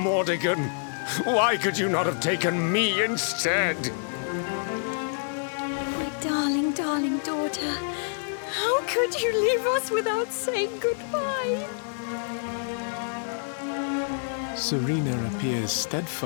Why could you not have taken me instead? My darling, darling daughter. How could you leave us without saying goodbye? Serena appears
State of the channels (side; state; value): right; silent; digital silence